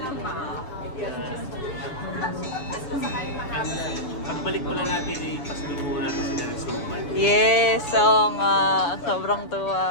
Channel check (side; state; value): right; late; 7.0 ms